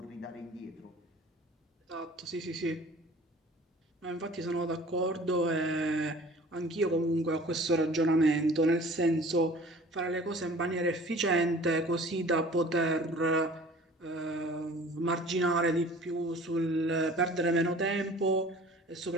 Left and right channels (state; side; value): normal; both; correlation 0.47